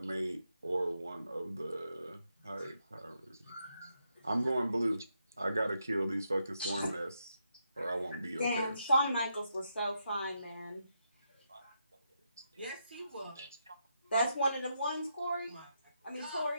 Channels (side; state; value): both; inverted; correlation -0.82